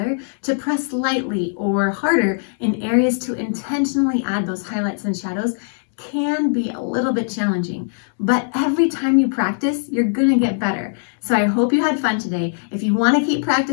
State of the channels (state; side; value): silent; right; digital silence